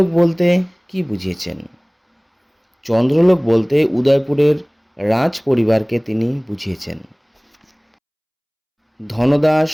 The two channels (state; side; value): identical; both; correlation 1.00